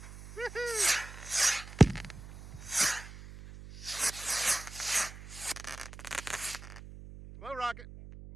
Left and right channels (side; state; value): right; noise; hum, 14 dB below the sound